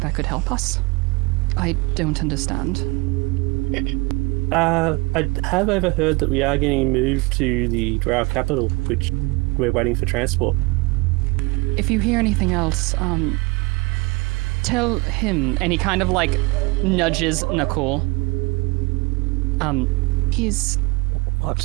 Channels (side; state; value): left; quieter; 25.7 dB